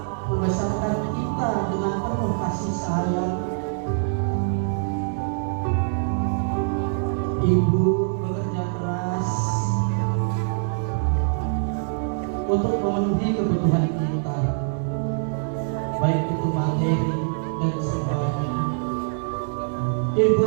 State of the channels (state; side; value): silent; left; digital silence